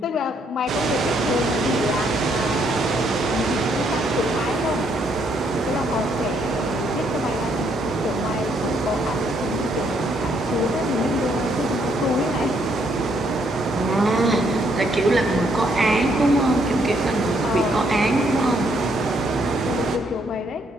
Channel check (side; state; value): both; normal; correlation 0.71